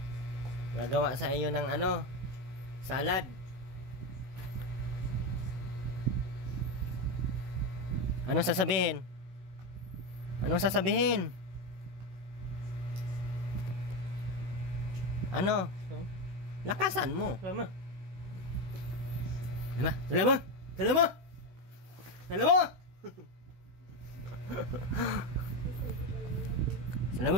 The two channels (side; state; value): left; late; 16 ms